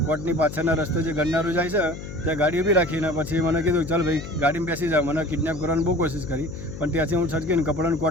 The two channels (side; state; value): left; noise; hum, 10 dB below the sound